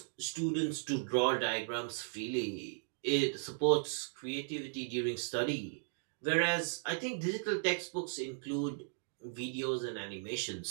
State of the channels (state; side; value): silent; left; digital silence